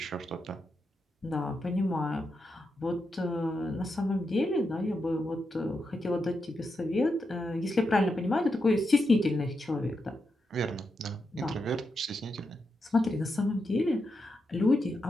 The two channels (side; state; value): both; normal; correlation 0.86